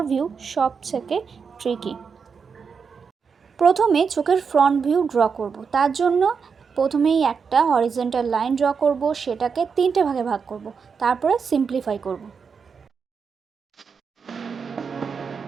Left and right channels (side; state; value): left; quieter; 5.8 dB